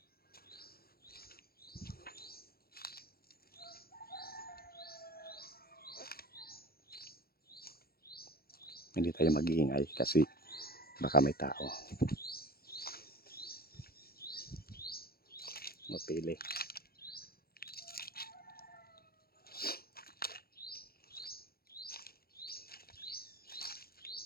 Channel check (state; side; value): late; right; 0.44 ms